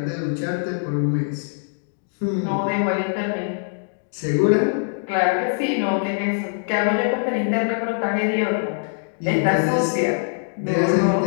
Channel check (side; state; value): right; silent; digital silence